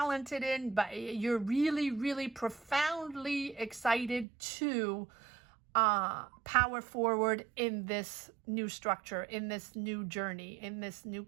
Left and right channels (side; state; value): left; drops out; at 4.2 s